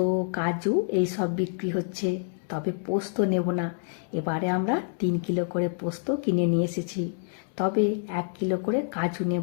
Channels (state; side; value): silent; right; 60 dB below the other